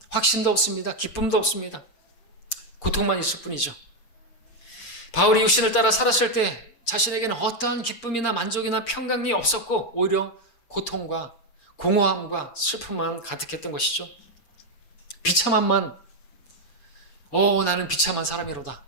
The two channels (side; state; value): right; late; 6.7 ms